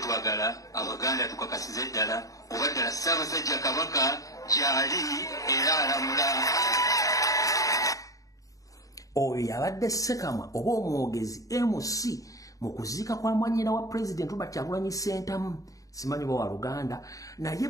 Abaganda tukakasize ddala oba ddala Ssaabasajja Kabaka gyali era alamula. Oyo yabadde Ssekamwa oba omwogezi MC mu kuziika kwa mwanyina wa president Robert Kyagulanyi Ssentamu. Simanyi wa Luganda naye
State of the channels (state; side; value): late; right; 0.16 ms